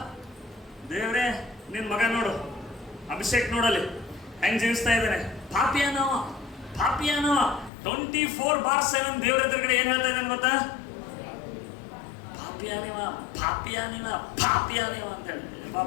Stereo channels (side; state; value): right; drops out; at 7.7 s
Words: ದೇವ್ರೇ, ನಿನ್ ಮಗ ನೋಡು, ಅಭಿಷೇಕ್ ನೋಡಲಿ ಹೆಂಗ್ ಜೀವಿಸ್ತಾ ಇದ್ದಾನೆ, ಪಾಪಿಯಾನವ 24/7 ದೇವ್ರ ಎದುರುಗಡೆ ಏನ್ ಹೇಳ್ತಾ ಇದ್ದಾನೆ ಗೊತ್ತಾ? ಪಾಪಿಯಾನಿವ ಅಂತ ಹೇಳಿ